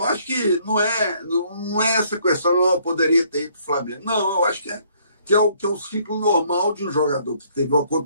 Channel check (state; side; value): inverted; both; correlation -0.64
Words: acho que não é essa questão, não poderia ter ido para o Flamengo. Não, eu acho que é o ciclo normal de um jogador que teve uma